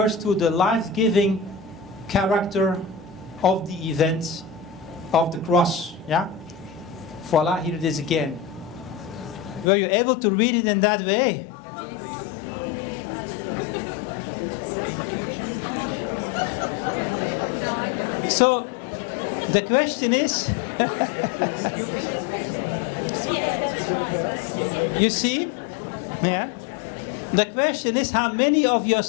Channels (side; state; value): right; drops out; at 9.7 s